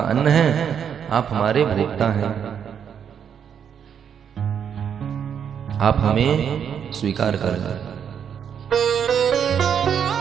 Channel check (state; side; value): quieter; left; 8.0 dB